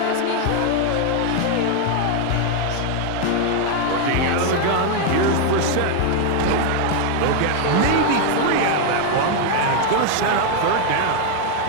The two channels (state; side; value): different; both; correlation 0.01